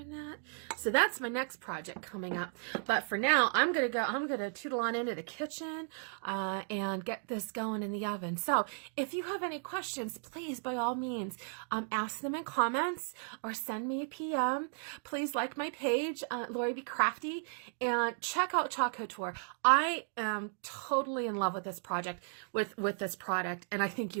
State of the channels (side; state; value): left; silent; 54 dB below the other